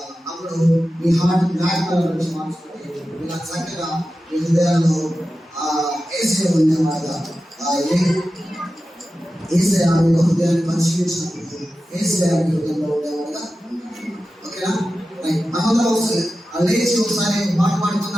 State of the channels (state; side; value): normal; both; correlation 0.93